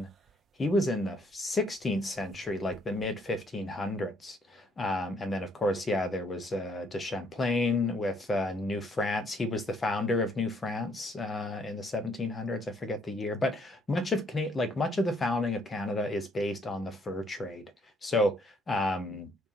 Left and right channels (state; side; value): normal; both; correlation 0.67